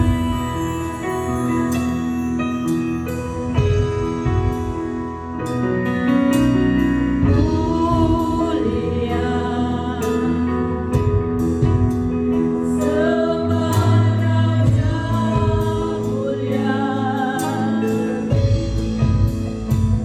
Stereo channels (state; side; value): identical; both; correlation 1.00